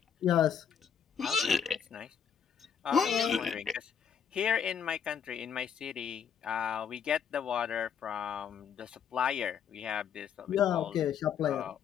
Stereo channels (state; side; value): quieter; right; 7.9 dB